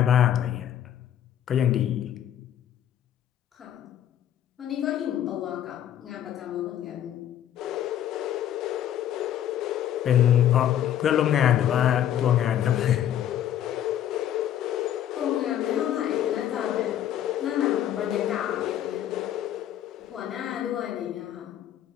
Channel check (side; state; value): right; quieter; 10.9 dB